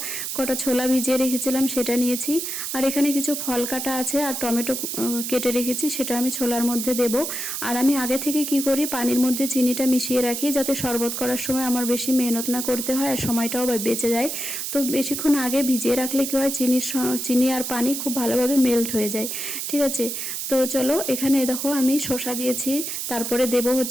কটা ছোলা ভিজিয়ে রেখেছিলাম সেটা নিয়েছি। আর এখানে কিছু ফল কাটা আছে আর টমেটো কেটে রেখেছি, সেটা আমি ছোলার মধ্যে দেব। আর আমি আগে থেকে কি করি, পানির মধ্যে চিনিটা মিশিয়ে রাখি যাতে শরবত করার সময় আমার বেশি মেহনত না করতে হয় আর সময়টাও বেঁচে যায়। তো বেশিক্ষণ আগে ভিজিয়ে রাখলে কি হয়, চিনি আর পানি খুব ভালোভাবে মেল্ট হয়ে যায়। ঠিক আছে, তো চলো এখানে দেখো আমি শসা দিয়েছি, তারপরে দেব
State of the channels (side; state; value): right; noise; hiss, 4 dB below the sound